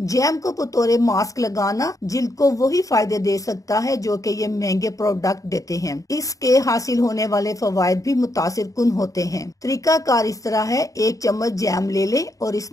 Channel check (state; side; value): late; right; 0.16 ms